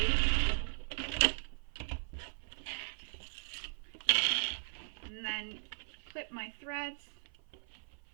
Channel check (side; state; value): left; silent; 52 dB below the other